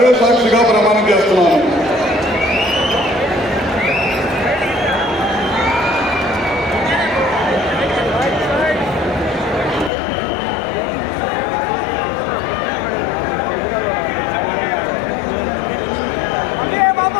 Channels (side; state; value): right; drops out; at 9.9 s